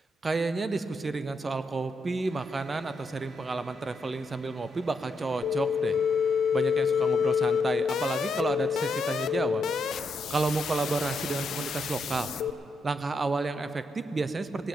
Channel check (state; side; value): normal; both; correlation 0.80